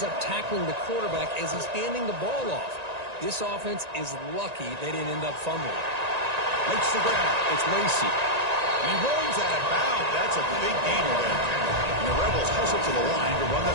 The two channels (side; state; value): left; late; 1.9 ms